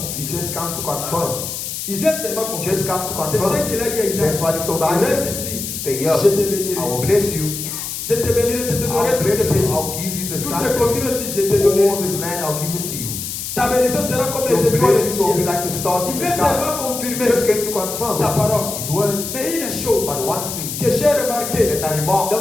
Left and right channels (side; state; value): left; noise; hiss, 6 dB below the sound